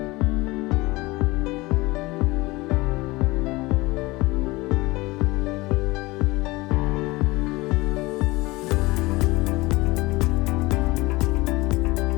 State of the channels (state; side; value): quieter; right; 21.9 dB